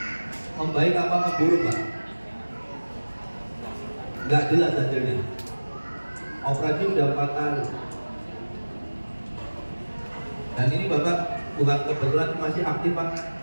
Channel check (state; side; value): inverted; both; correlation -1.00